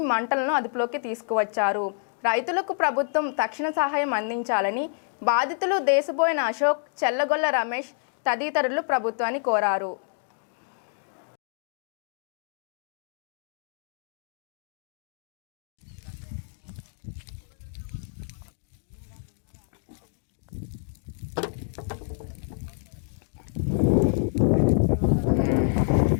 మంటలను అదుపులోకి తీసుకువచ్చారు. రైతులకు ప్రభుత్వం తక్షణ సహాయం అందించాలని బాధితులు దేశబోయిన అశోక్, చెల్లగొల్ల రమేష్ తదితరులు ప్రభుత్వాన్ని కోరారు.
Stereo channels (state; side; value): silent; right; digital silence